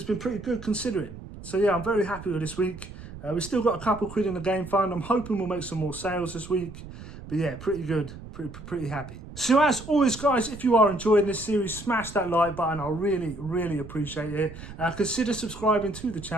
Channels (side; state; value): right; noise; rumble, 14 dB below the sound